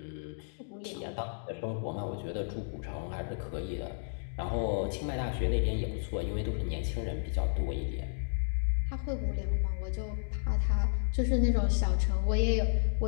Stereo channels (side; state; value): right; silent; digital silence